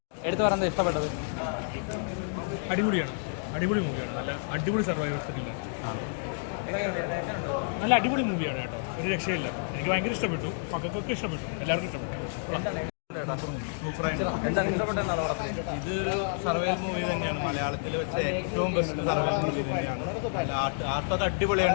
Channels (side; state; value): right; silent; digital silence